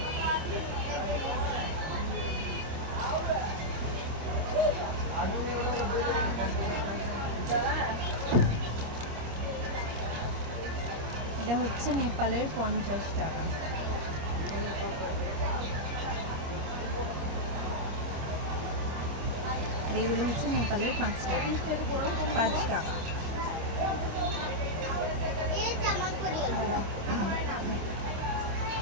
এটা হচ্ছে নেপালের 50 টাকা। এগুলো হচ্ছে নেপালের 5 টাকা। 5 টাকা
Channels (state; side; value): late; left; 26 ms